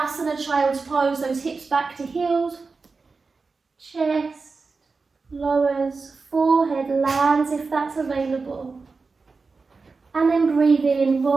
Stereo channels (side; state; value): left; quieter; 4.3 dB